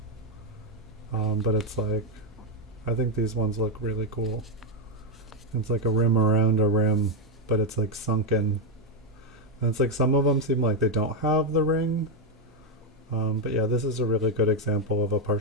But it's like, I think these ones look really cool. It's like a rim around a rim, but it's like sunken. And it's like some of them seem like they don't have the ring. But yeah, this is a really good example of a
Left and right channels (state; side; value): normal; both; correlation 0.04